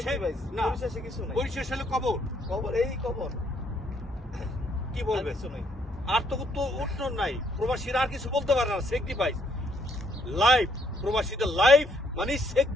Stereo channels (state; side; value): normal; both; correlation 0.70